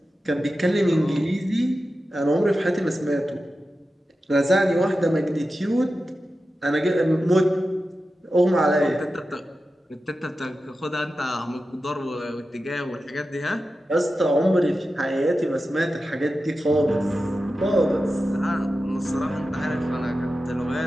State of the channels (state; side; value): normal; both; correlation 0.92